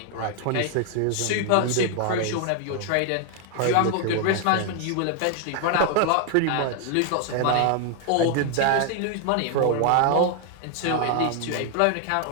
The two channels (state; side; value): different; both; correlation 0.00